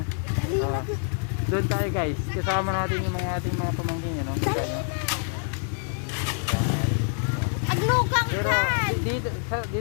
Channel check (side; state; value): right; silent; 61 dB below the other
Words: Doon tayo, guys. Kasama natin yung mga ating mga pamangkin, no. Kita nyo. Pero